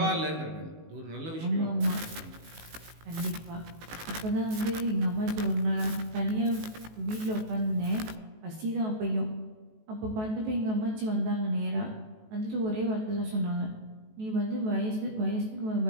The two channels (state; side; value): late; left; 19 ms